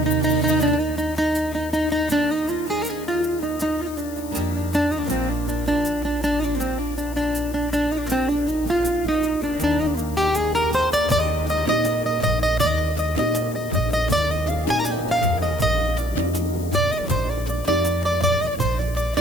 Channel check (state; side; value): noise; left; hiss, 17 dB below the sound